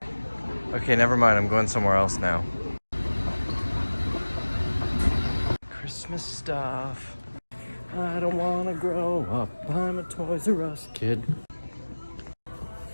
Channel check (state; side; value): inverted; both; correlation -1.00